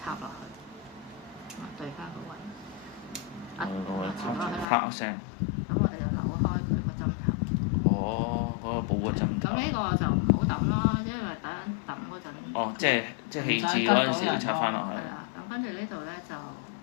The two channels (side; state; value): right; drops out; at 4.7 s